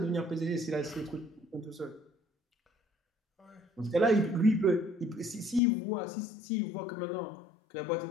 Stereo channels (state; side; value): drops out; right; at 5.6 s